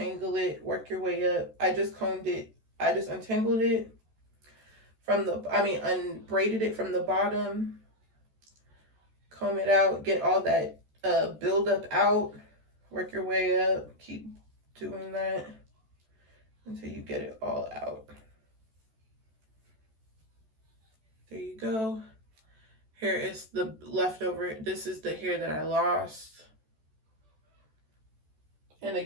it, work your way up. I just untangled it from unbraided it from the bottom, comb it out, get all that buildup out, Work your way up. Keep doing that until you get it all out. There you go. Here is the leftover. This is the hair that I lost. And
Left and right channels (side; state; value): left; late; 14 ms